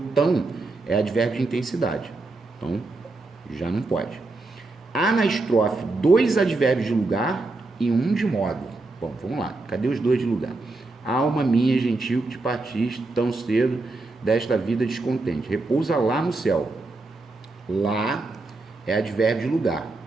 tão é advérbio de intensidade. Então, já não pode. Há na estrofe 2 advérbios de lugar e 1 de modo. Bom, vamos lá. Cadê os 2 de lugar? Alma minha gentil que te partiste tão cedo desta vida descontente. Repousa lá no céu. Lá é advérbio de lugar.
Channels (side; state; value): left; quieter; 3.3 dB